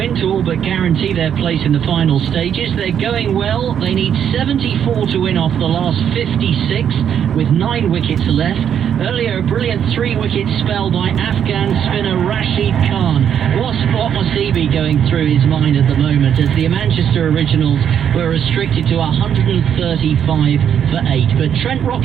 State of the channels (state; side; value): quieter; left; 8.8 dB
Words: to all but guarantee their place in the final stages. They're going well. They need 74 to win off the last 56 with 9 wickets left. Earlier, a brilliant 3-wicket spell by Afghan spinner Rashid Khan. What must he be going through his mind at the moment as the Manchester Originals were restricted to 135 for 8. But Trent